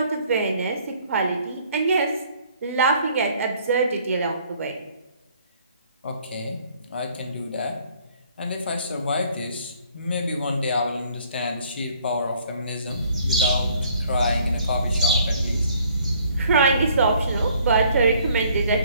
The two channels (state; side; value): inverted; both; correlation -0.61